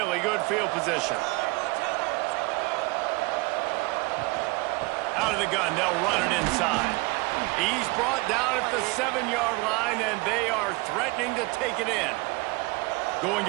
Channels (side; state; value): left; quieter; 25.6 dB